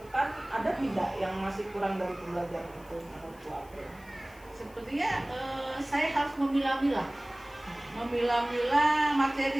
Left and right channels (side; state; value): left; noise; hiss, 26 dB below the sound